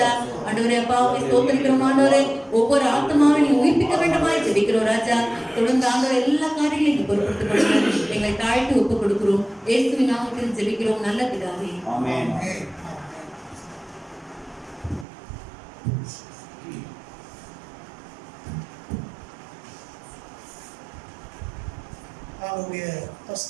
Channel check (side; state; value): left; drops out; at 15.1 s